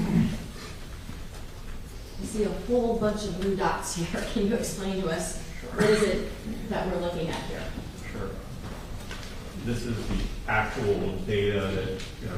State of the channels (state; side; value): identical; both; correlation 1.00